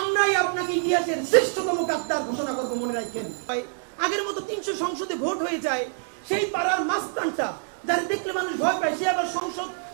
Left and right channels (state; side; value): silent; left; digital silence